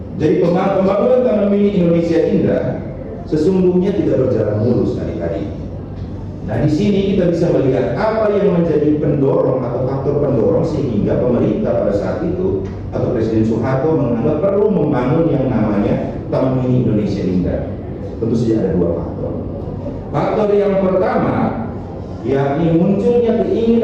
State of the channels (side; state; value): both; identical; correlation 1.00